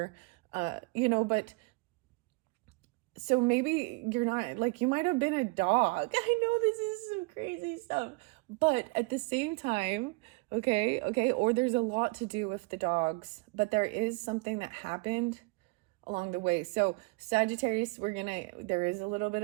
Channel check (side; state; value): left; quieter; 27.7 dB